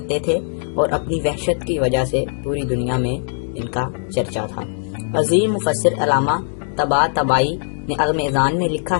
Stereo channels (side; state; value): right; silent; digital silence